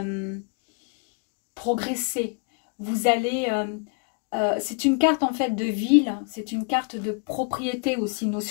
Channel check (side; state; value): right; quieter; 38.2 dB